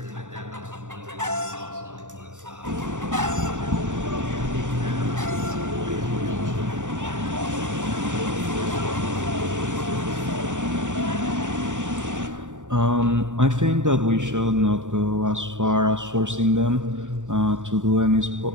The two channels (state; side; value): late; left; 0.86 ms